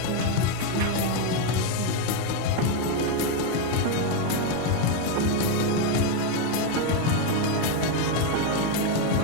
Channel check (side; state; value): both; different; correlation 0.02